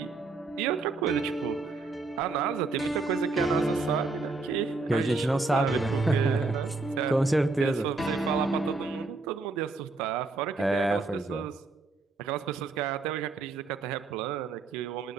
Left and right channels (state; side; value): quieter; left; 3.7 dB